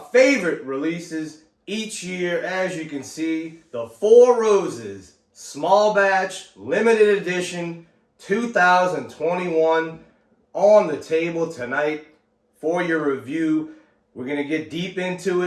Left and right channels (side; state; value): both; identical; correlation 1.00